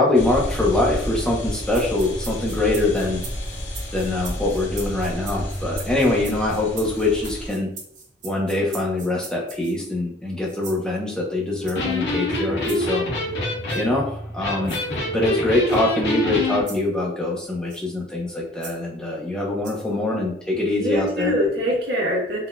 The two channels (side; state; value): both; normal; correlation 0.53